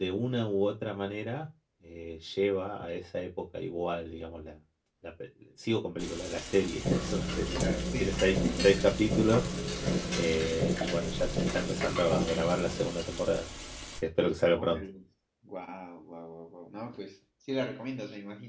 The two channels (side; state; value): both; identical; correlation 1.00